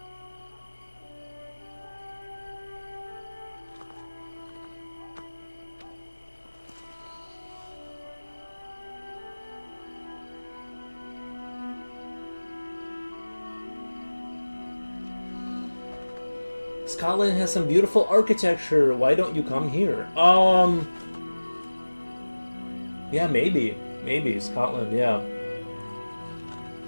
Scotland has some beautiful architecture. Why don't you come here? Yeah, maybe Scotland. Yeah,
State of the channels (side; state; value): both; inverted; correlation -1.00